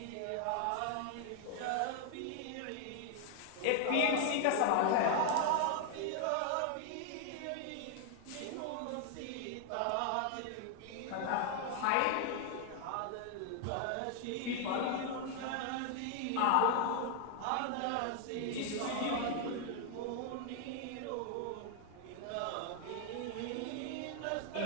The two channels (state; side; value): different; both; correlation 0.00